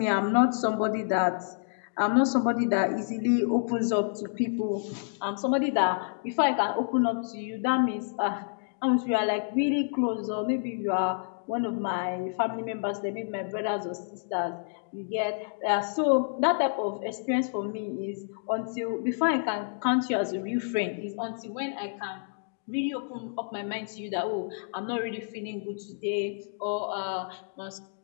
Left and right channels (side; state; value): right; silent; digital silence